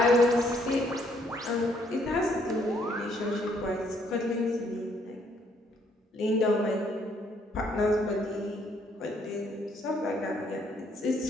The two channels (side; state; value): both; normal; correlation 0.68